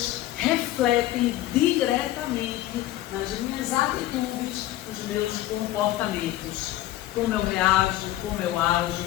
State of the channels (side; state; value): right; quieter; 14.9 dB